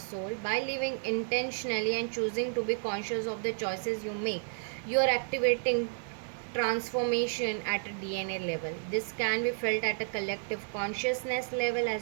By living intentionally and choosing to be conscious of the choices you make, you are activating transformation at a DNA level. This can be felt at a collective consciousness level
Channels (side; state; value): left; silent; digital silence